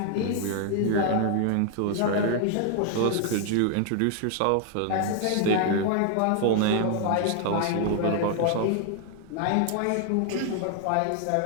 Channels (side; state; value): both; different; correlation 0.00